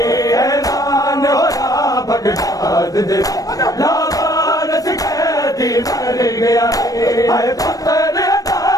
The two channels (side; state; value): right; late; 0.18 ms